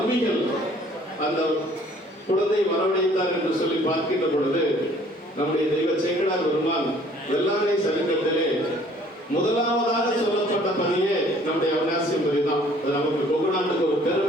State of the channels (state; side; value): normal; both; correlation 0.57